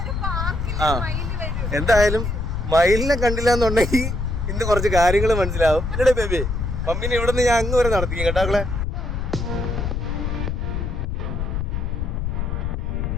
ആ എന്തായാലും മയിലിനെ കണ്ടില്ല എന്നുണ്ടെങ്കിൽ ഇന്ന് കുറച്ച് കാര്യങ്ങൾ മനസ്സിലാവും. എന്നടേ ബേബി, മമ്മീനെ ഇവിടെ നിന്ന് ഞാൻ അങ്ങ് വരെ നടത്തിക്കും കേട്ടാക്കളെ.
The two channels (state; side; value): noise; left; rumble, 2 dB below the sound